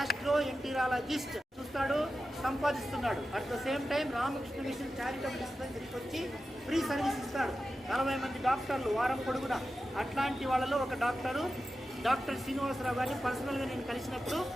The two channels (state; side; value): normal; both; correlation 0.92